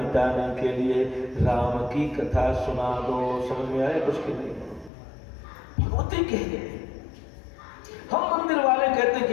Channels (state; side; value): drops out; right; at 4.9 s